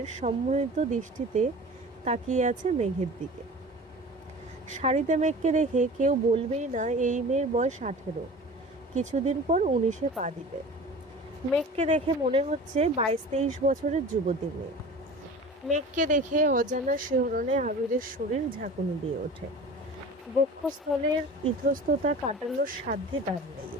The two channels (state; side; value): normal; both; correlation 0.39